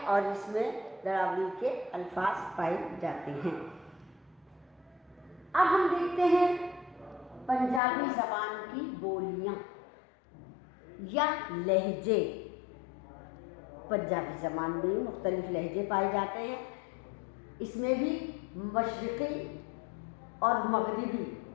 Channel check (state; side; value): drops out; right; at 7.8 s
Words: इसमें दरावड़ी के अल्फाज पाए जाते हैं। अब हम देखते हैं पंजाबी ज़बान की बोलियां या लहजे। पंजाबी ज़बान में मुख्तलिफ लहजे पाए जाते हैं। इसमें भी मशरिक़ी और मगरिबी